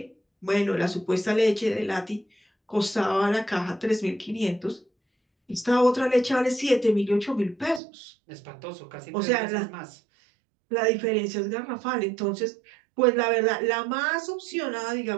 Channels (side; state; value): left; drops out; at 7.8 s